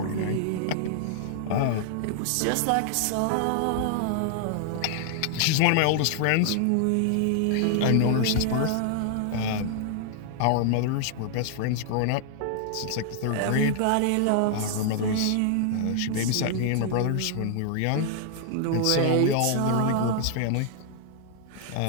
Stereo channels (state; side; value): different; both; correlation 0.00